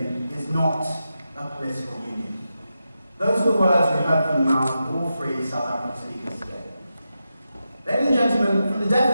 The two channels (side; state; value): both; inverted; correlation -0.89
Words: is not a political union. Those are the words we heard from the mouth of all three South African speakers today. Ladies and gentlemen, from the